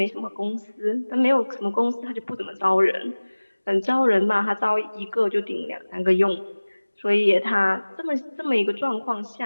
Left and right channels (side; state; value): both; inverted; correlation -1.00